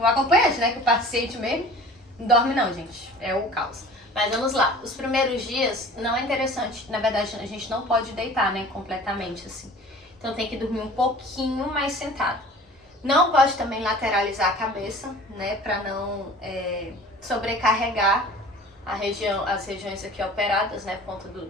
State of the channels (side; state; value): both; normal; correlation 0.44